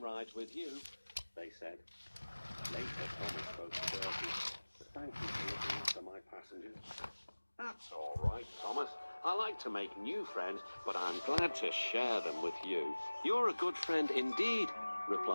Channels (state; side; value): inverted; both; correlation -1.00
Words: rides with you," they said. Later, Thomas spoke to Bertie. "Thank you for looking after my passengers." "That's all right, Thomas. I like to make new friends, but I'm glad to share them with you." "You're a good friend indeed,"